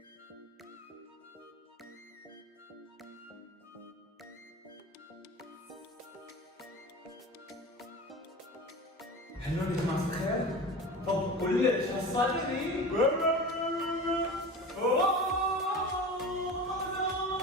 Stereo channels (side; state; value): both; normal; correlation 0.33